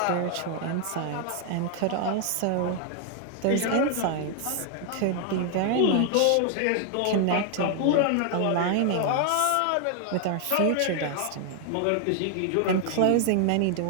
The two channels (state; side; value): different; both; correlation 0.00